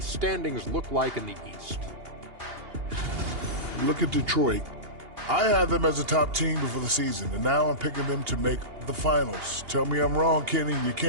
standings look like in the East. Look at Detroit. I had them as a top team before the season, and now I'm picking them to make the finals. Tell me I'm wrong, Kenny. You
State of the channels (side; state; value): left; late; 2.8 ms